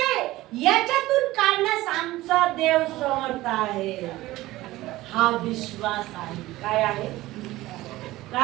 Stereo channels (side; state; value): left; quieter; 17.5 dB